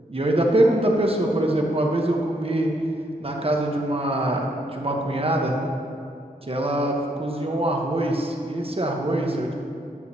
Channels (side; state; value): both; normal; correlation 0.73